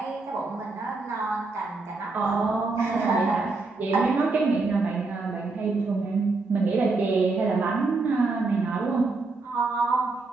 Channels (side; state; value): left; quieter; 3.7 dB